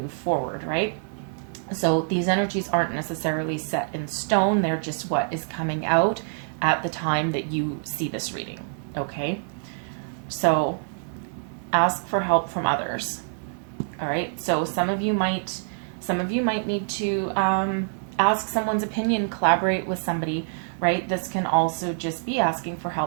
forward, right? So these energies aren't necessarily set in stone. They're just what is coming out at the time that you see this reading, okay? So ask for help from others. All right. So some of you might need to ask someone's opinion, collaborate with somebody, right? This can also just be asking for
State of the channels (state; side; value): silent; left; digital silence